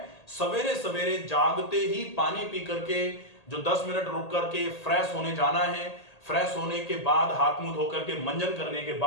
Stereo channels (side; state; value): right; late; 1.8 ms